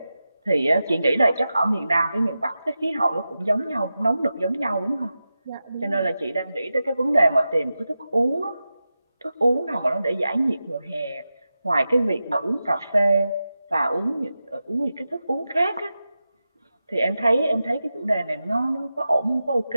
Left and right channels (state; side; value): inverted; both; correlation -0.92